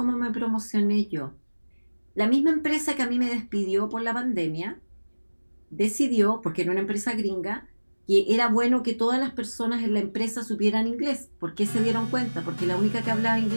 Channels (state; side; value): inverted; both; correlation -1.00